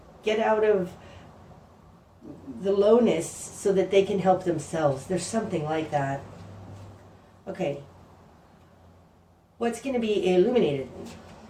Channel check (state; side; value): identical; both; correlation 1.00